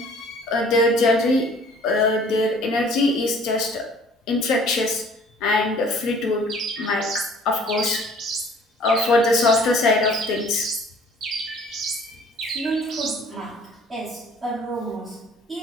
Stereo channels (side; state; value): both; normal; correlation 0.53